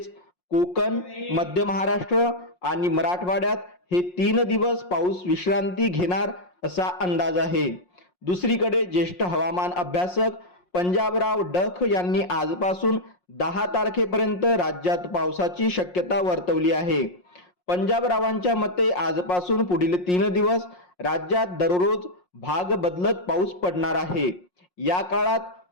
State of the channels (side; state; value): right; late; 5.6 ms